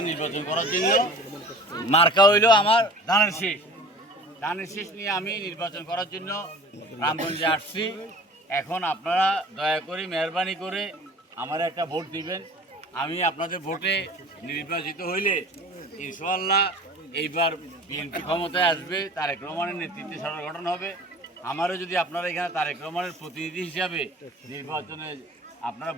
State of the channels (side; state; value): both; normal; correlation 0.43